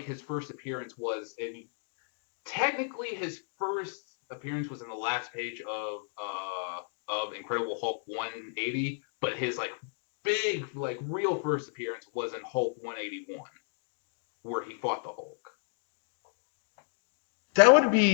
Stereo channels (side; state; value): right; silent; digital silence